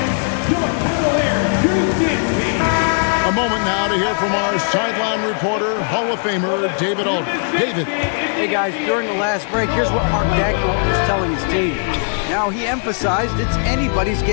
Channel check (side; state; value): right; silent; 67 dB below the other